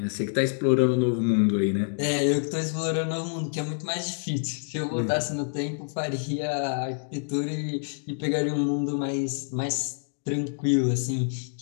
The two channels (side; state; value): right; silent; digital silence